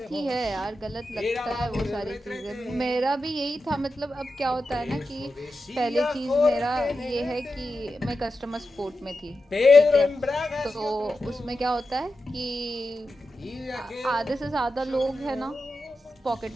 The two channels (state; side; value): normal; both; correlation 0.90